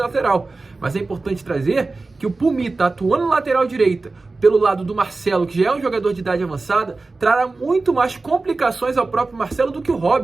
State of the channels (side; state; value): left; quieter; 3.6 dB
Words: lateral. Mas é importante trazer que o Pumita atuando na lateral direita, pelo lado do Marcelo, que já é um jogador de idade avançada, trará muito mais complicações ao próprio Marcelo do que o